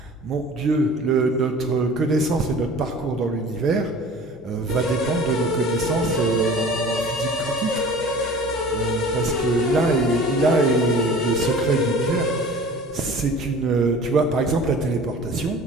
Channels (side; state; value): both; normal; correlation 0.43